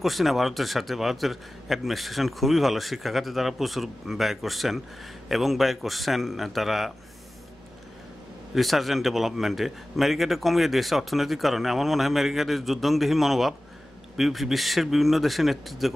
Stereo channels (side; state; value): both; normal; correlation 0.96